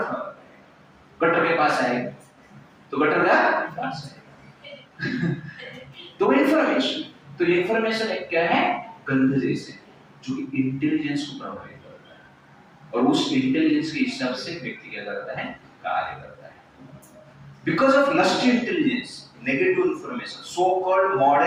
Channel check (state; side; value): identical; both; correlation 1.00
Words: फ्लावर। गटर के पास आएगा तो गटर का पास आएगा। तो इंफॉर्मेशन, तो इंफॉर्मेशन एक क्या है? गंध जैसे, जो कि इंटेलिजेंस को प्रभावित करता है और उस इंटेलिजेंस के हिसाब से व्यक्ति क्या करता है? कार्य करता है। Because of lust intelligence, negative information, so called